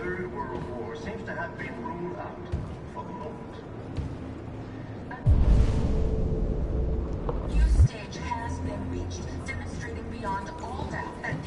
world war seems to have been ruled out for the moment. A new stage has been reached, demonstrating beyond all doubt that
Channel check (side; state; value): both; identical; correlation 1.00